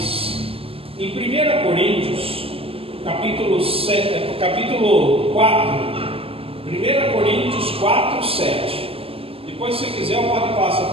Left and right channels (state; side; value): late; left; 0.28 ms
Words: em 1 Coríntios, capítulo 4, 1 Coríntios 4, 7. Depois, se quiser, eu pode passar